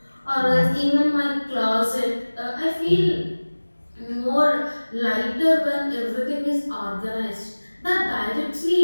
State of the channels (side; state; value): both; inverted; correlation -1.00